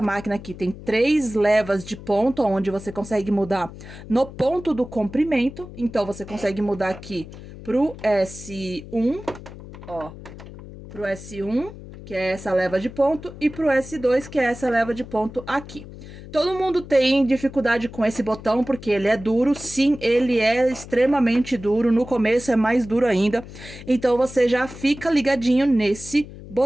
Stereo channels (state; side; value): noise; left; hum, 15 dB below the sound